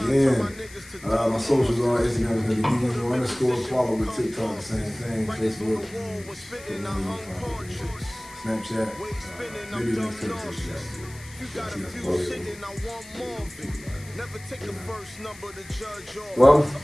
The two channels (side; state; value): left; noise; hiss, 19 dB below the sound